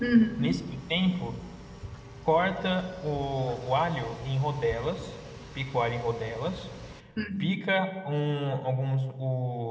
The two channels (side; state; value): both; identical; correlation 1.00